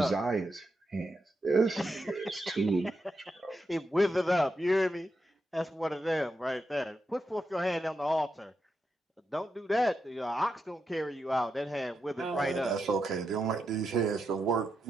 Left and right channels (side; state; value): both; normal; correlation 0.86